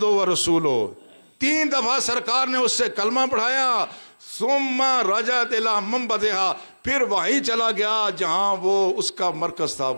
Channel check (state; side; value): inverted; both; correlation -1.00